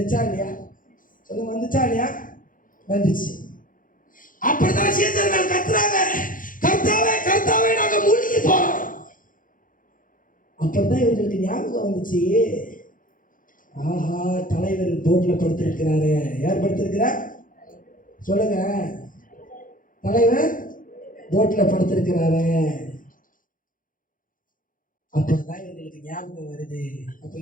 இல்லையா? சொல்லுங்க, வந்துச்சா இல்லையா? வந்துச்சு. அப்படிதான் சீசர்கள் கத்துறாங்க, கர்த்தாவே கர்த்தாவே நாங்க மூழ்கி போறோம். அப்பதான் இவர்களுக்கு ஞாபகம் வந்துச்சு, ஆஹா தலைவர் போட்ல படுத்திருக்கிறாரு. யார் படுத்திருக்கிறார்? சொல்லுங்க, தலைவர் போட்ல படுத்திருக்கிறாரு. அப்பதான் இவர்களுக்கு ஞாபகம் வருது. அப்ப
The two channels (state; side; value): late; right; 0.39 ms